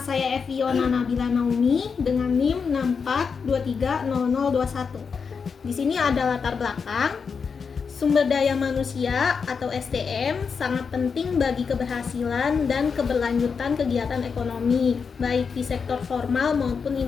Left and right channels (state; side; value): quieter; right; 5.7 dB